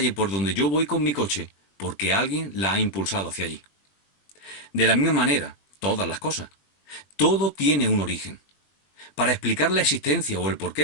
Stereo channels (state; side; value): late; right; 21 ms